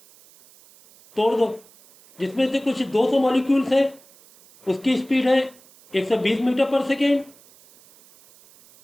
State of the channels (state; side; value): noise; right; hiss, 27 dB below the sound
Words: तोड़ दो। जिसमें से कुछ 200 मॉलिक्यूल्स है, उसकी स्पीड है 120 मीटर पर सेकेंड।